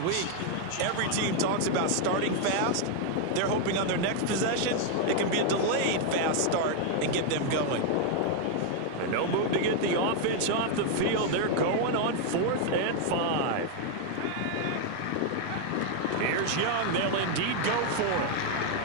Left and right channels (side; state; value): both; different; correlation 0.00